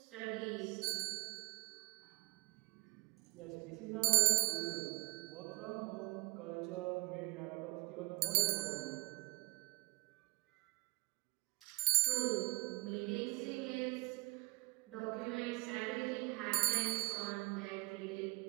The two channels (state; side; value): quieter; left; 25.9 dB